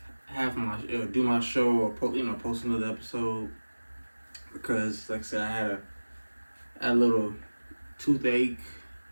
have my do my show or post another episode because, like I said, I had a little toothache,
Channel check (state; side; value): inverted; both; correlation -1.00